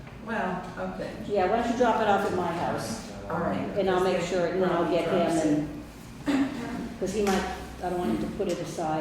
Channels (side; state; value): both; identical; correlation 1.00